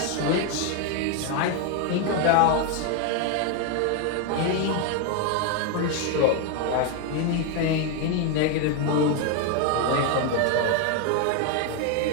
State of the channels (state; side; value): different; both; correlation 0.01